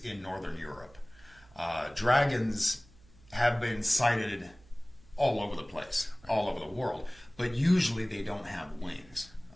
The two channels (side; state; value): right; noise; hum, 26 dB below the sound